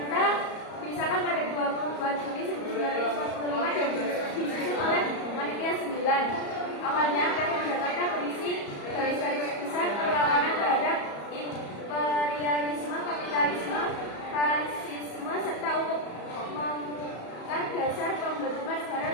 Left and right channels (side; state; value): right; late; 34 ms